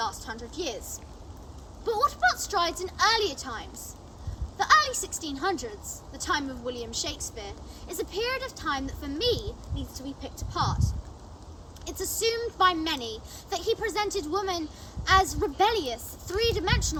100 years. But what about strides in earlier times? The early 1600s, the time of William Shakespeare, is a period of time that for me needs to be picked apart. It's assumed by many that he presented women as rebellious,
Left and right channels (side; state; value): both; identical; correlation 1.00